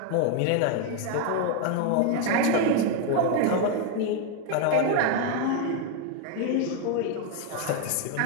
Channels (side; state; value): both; different; correlation 0.01